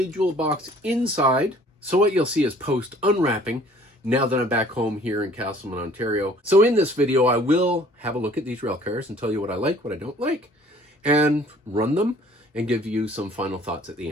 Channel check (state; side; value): normal; both; correlation 0.54